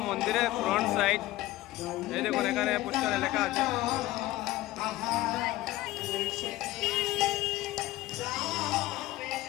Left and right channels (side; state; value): right; quieter; 17.1 dB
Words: মন্দিরের ফ্রন্ট সাইড। এই দেখুন, এখানে পোস্টারে লেখা আছে।